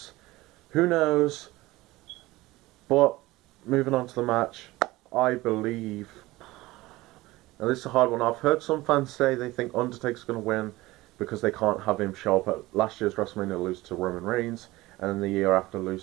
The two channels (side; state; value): left; quieter; 19.2 dB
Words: Who knows? But moving on to the match, I believe... Now this is a hard one. I've heard some fans say they think Undertaker's going to win because they can't have him show up at last year's WrestleMania, lose to Roman Reigns, and then the year after